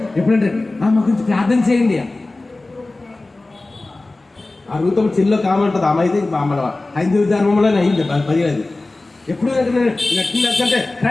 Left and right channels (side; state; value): right; quieter; 3.1 dB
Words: ఎప్పుడంటే మా గురించి ప్రార్థన చేయండి. ఆ రూతం చిల్లో కామంటుంది. ఆమె అయితే మన హైందవ ధర్మంలోనే అయింది 10 ఎప్పుడు అంటే